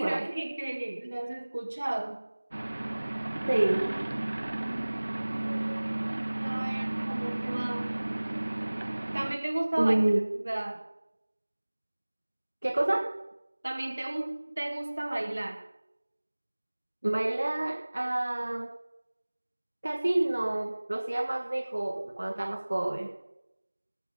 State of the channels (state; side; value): inverted; both; correlation -1.00